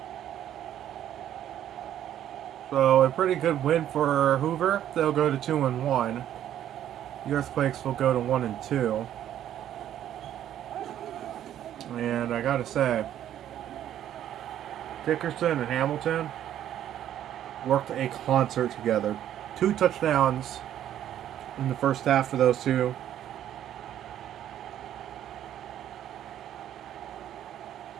So a pretty good win for Hoover. They'll go to 2-1. The Earthquakes will go to 1-2. And I gotta say, Dickerson and Hamilton worked a concert together. 2 touchdowns in the first half for those two.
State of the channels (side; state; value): left; quieter; 11.2 dB